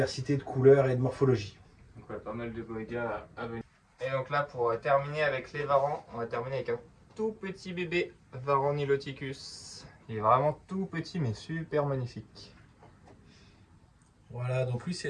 de couleurs et de morphologie. Donc ouais, pas mal de boigas à venir. Et donc là, pour terminer avec les varans, on va terminer avec un tout petit bébé varan niloticus. Il est vraiment tout petit mais super magnifique. Voilà, donc lui c'est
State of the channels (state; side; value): identical; both; correlation 1.00